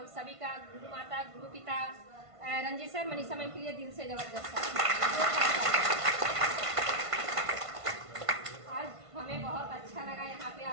सभी का, गुरु माता, गुरु पिता, रंजीत सर, मनीषा मैम के लिए दिल से जबरदस्त आज हमें बहुत अच्छा लगा, यहाँ पे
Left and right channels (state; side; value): late; left; 1.5 ms